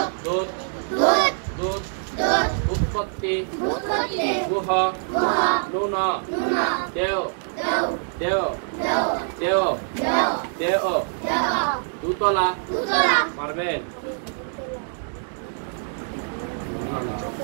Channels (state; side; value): silent; left; digital silence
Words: দুধ দুধ উৎপত্তি গুহ নুন দেও দেও দেও দেও দুতলা। পারবেন?